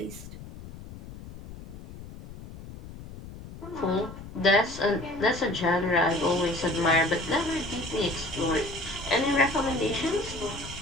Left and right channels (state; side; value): noise; left; rumble, 14 dB below the sound